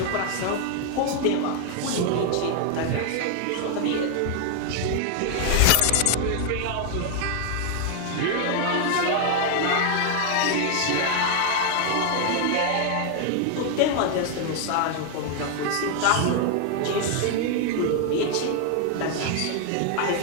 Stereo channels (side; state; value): both; different; correlation 0.00